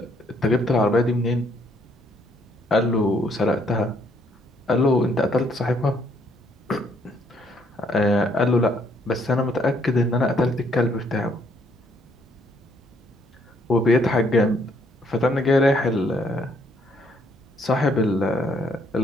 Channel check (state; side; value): normal; both; correlation 0.69